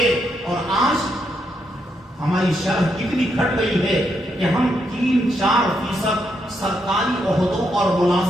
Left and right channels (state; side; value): normal; both; correlation 0.79